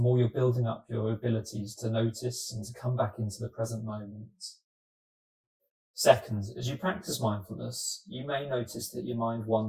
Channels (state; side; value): identical; both; correlation 1.00